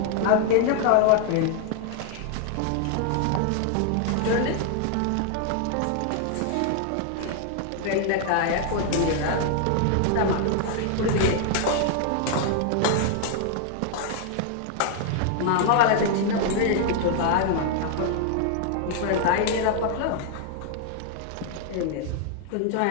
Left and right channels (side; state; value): both; different; correlation 0.00